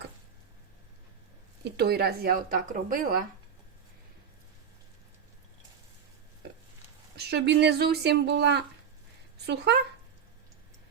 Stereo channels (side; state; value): left; quieter; 7.4 dB